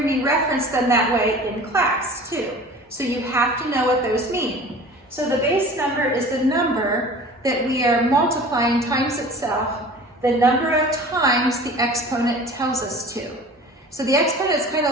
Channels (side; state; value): both; normal; correlation 0.42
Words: me reference them that way in class too. So you have to know what those mean. So the base number is the number that we are multiplying times itself, the number of times the exponent tells us to. So the exponent is kind of